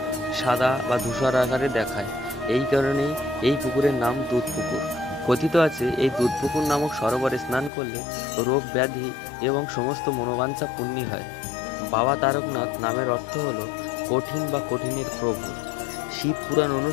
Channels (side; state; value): right; drops out; at 7.7 s